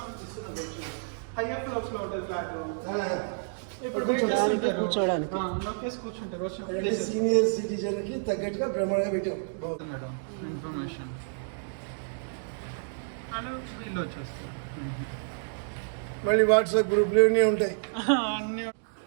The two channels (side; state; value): left; silent; digital silence